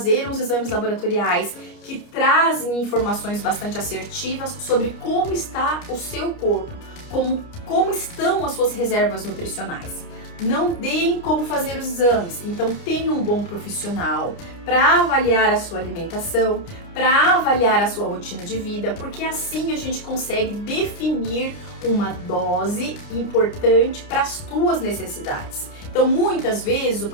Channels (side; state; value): right; late; 29 ms